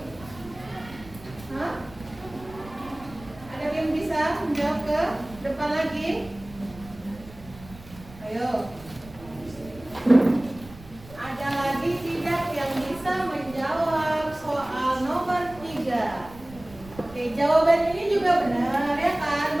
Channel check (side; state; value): right; noise; rumble, 19 dB below the sound